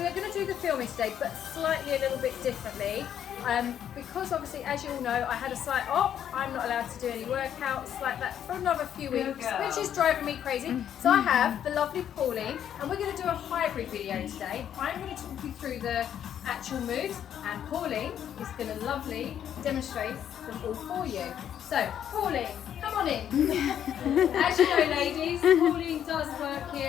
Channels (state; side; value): quieter; right; 9.7 dB